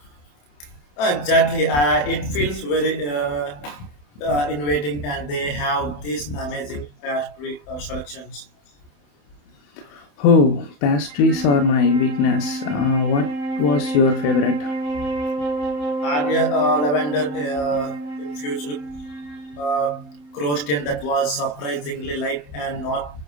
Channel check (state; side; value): late; right; 27 ms